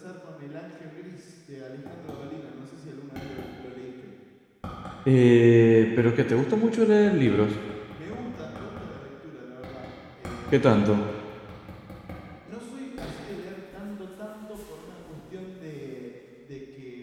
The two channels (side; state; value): both; identical; correlation 1.00